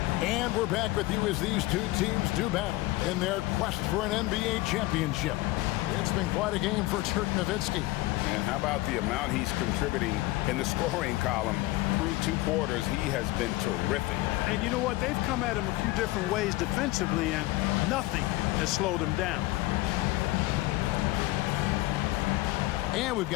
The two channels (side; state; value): right; quieter; 19.2 dB